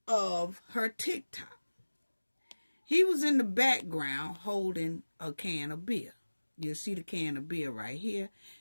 of her TikTok. He was in the background holding a can of beer. You'll see the can of beer right here.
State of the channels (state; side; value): inverted; both; correlation -1.00